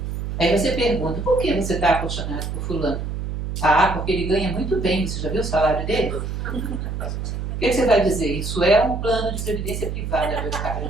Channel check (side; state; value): right; noise; hum, 4 dB below the sound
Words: Aí você pergunta, por que você está apaixonado por fulano? Ah, porque ele ganha muito bem, você já viu o salário dele? O que você vai dizer? Isso é um plano de previdência privada, meu cara,